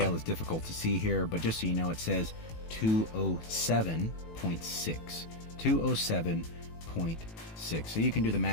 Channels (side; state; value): right; late; 18 ms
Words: is difficult to see here, but just so you know, it says 207.6. 207.6. So you can do the